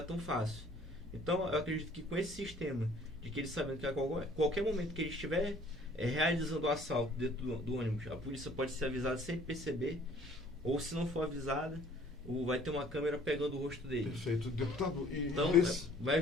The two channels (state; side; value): normal; both; correlation 0.55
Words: tão fácil. Então, eu acredito que com esse sistema, de que eles sabendo que a qualquer momento que ele estiver realizando o assalto dentro do ônibus, a polícia pode ser avisada sem perceber, ou se não for avisada, vai ter uma câmera pegando o rosto dele. Perfeito. Deputado, então, vai